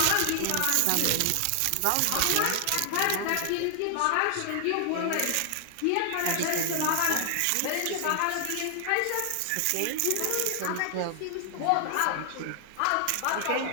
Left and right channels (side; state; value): both; different; correlation 0.00